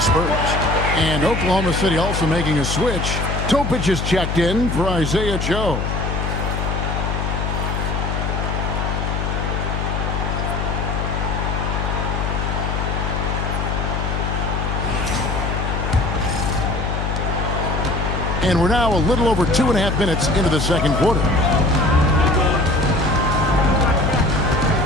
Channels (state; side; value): noise; left; hum, 1 dB below the sound